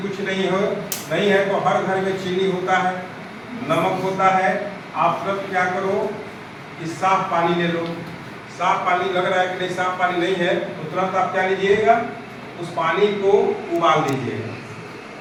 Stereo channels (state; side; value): identical; both; correlation 1.00